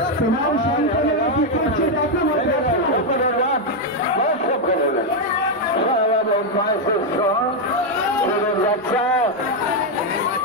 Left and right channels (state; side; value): normal; both; correlation 0.02